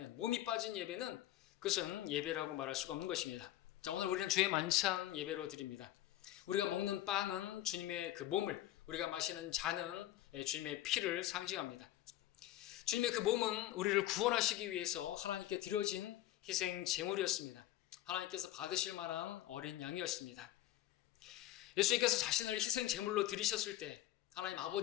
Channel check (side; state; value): right; quieter; 14.2 dB